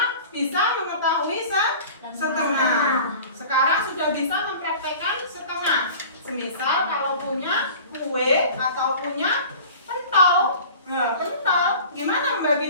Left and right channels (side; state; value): both; inverted; correlation -0.41